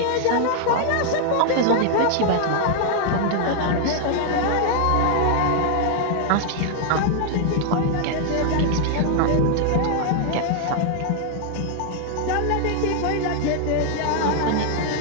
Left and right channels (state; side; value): different; both; correlation 0.00